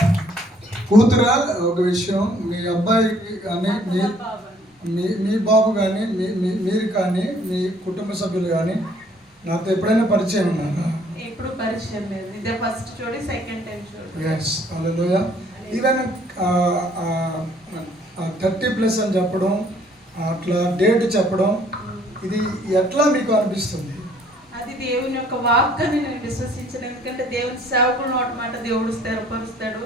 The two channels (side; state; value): both; normal; correlation 0.61